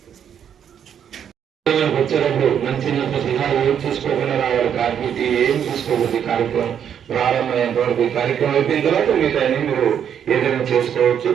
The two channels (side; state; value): left; quieter; 8.7 dB